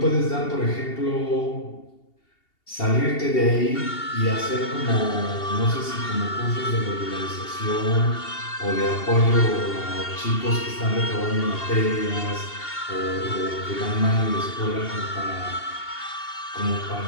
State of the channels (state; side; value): late; right; 2.8 ms